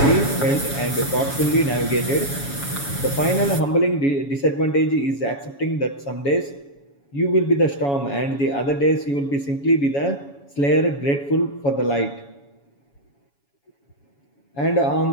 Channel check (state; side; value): late; right; 7.1 ms